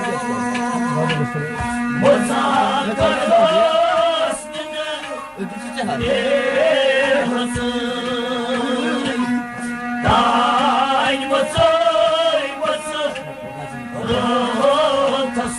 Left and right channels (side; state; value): both; identical; correlation 1.00